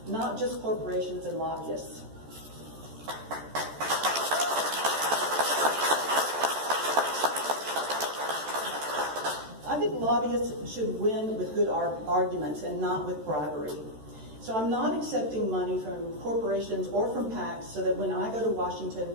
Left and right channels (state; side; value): late; left; 13 ms